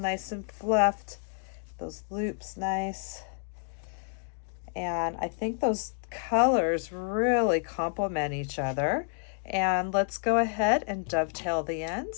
and fluffed, those loops nice. And I think those colors really complement each other. And let's go ahead and dovetail the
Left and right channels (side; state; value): right; silent; 58 dB below the other